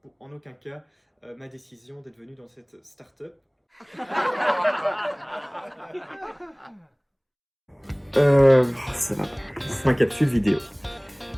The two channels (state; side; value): identical; both; correlation 1.00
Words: en aucun cas ma décision d'être venu dans cette start-up. C'est ma capsule vidéo.